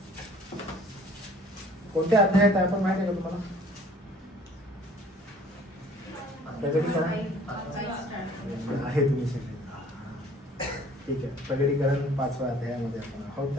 कोणत्या अध्यायात आहे आपण माहिती आहे का तुम्हाला? प्रगटीकरण आहे तुम्ही सगळे. ठीक आहे, प्रगटीकरण 5व्या अध्यायामध्ये आपण आहोत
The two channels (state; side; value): normal; both; correlation 0.53